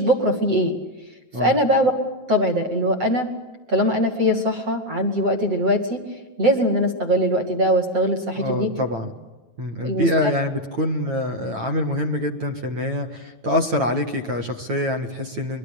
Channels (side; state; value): left; late; 8.9 ms